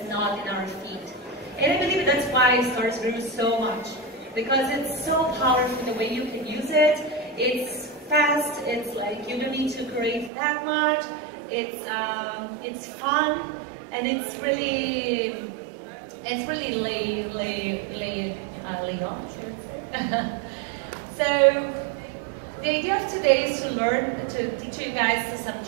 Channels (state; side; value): drops out; left; at 10.3 s